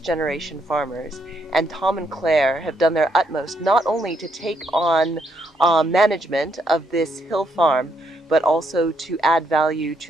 farmers, and Tom and Claire have done their utmost not only to take on management of this hill farm, but also to add value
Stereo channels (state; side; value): normal; both; correlation 0.75